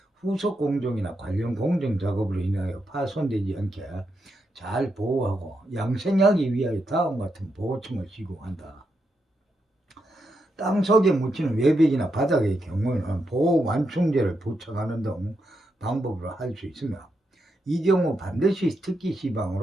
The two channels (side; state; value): both; normal; correlation 0.83